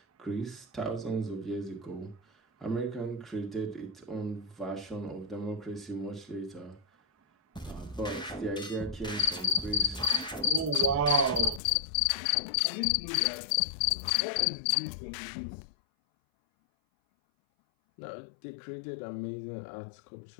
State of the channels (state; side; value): drops out; right; at 11.6 s